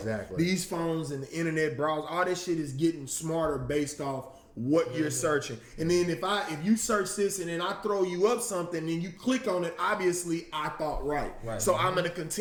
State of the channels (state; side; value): identical; both; correlation 1.00